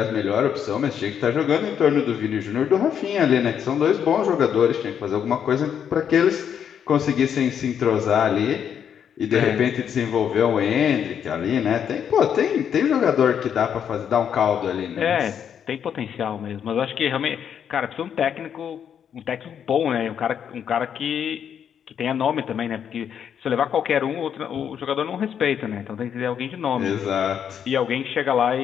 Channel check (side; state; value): right; quieter; 8.4 dB